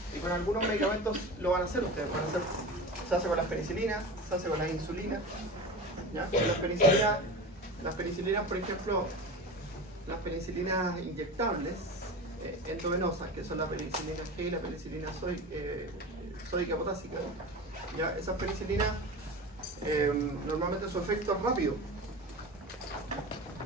Y con algunos medicamentos lo van a hacer ustedes. Se hace con las penicilinas, se hace con las insulinas. ¿Ya? Con las penicilinas, por ejemplo, las penicilinas inyectables endovenosas, que son la penicilina G y la penicilina sódica potásica. ¿Ya? Esas penicilinas normalmente su efecto es rápido,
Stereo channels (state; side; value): normal; both; correlation 0.30